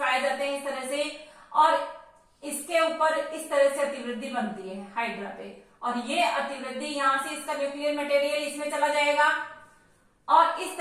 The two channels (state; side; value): identical; both; correlation 1.00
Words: जाते हैं इस तरह से और इसके ऊपर इस तरह से अतिवृद्धि बनती है हाइड्रा पे और ये अतिवृद्धि यहाँ से इसका न्यूक्लियर मटेरियल इसमें चला जाएगा और इस